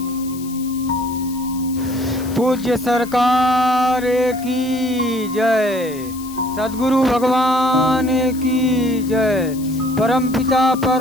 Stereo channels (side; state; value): left; noise; hiss, 17 dB below the sound